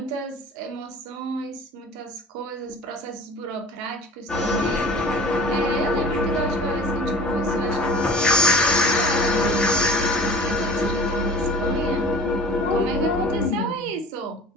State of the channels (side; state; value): both; normal; correlation 0.42